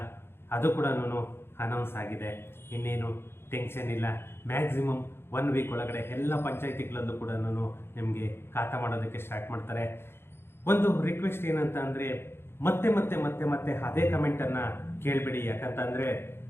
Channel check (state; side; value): late; right; 0.11 ms